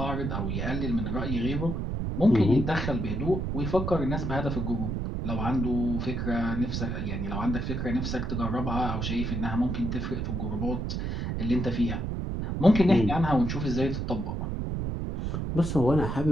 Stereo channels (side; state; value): right; noise; rumble, 2 dB below the sound